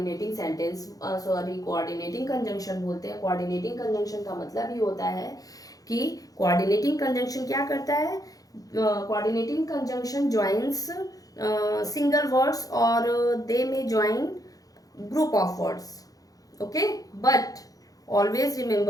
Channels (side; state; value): right; late; 0.17 ms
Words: सेंटेंस कोऑर्डिनेटिंग कंजंक्शन बोलते हैं। कोऑर्डिनेटिंग कंजंक्शन का मतलब ये होता है कि कोऑर्डिनेटिंग कंजंक्शन क्या करता है, coordinating conjunction joins single words और दे में join group of words, okay, but always